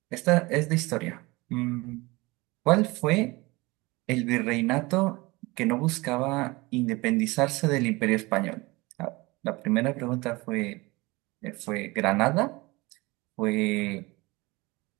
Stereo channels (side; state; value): left; quieter; 23.1 dB